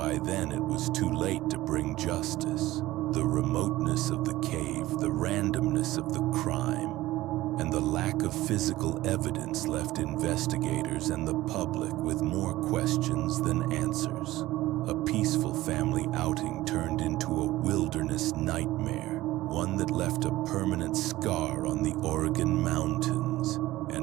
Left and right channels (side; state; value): left; quieter; 16.9 dB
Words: then it was too late to bring justice. The remoteness of the cave, the randomness of the crime, and the lack of physical evidence left investigators and the public with more questions than answers. A peaceful family outing turned into a wilderness nightmare, one that left a permanent scar on the Oregon mountains.